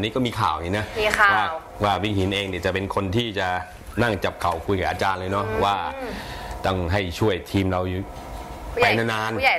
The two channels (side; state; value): both; identical; correlation 1.00